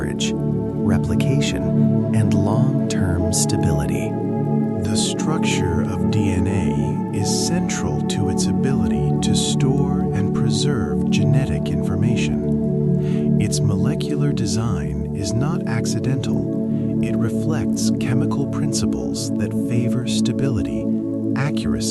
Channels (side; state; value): both; identical; correlation 1.00